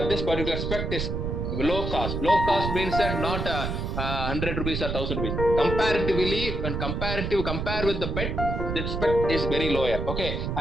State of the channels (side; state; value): right; noise; rumble, 2 dB below the sound